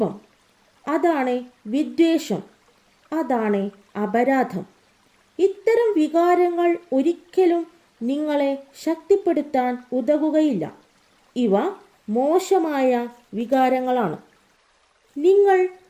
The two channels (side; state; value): both; identical; correlation 1.00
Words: അതാണ് വിദ്വേഷം, അതാണ് അപരാധം. ഇത്തരം വികാരങ്ങൾ ഒരിക്കലും നിങ്ങളെ ശക്തിപ്പെടുത്താൻ ഉതകുകയില്ല. ഇവ മോശമായ വികാരങ്ങളാണ്. നിങ്ങൾ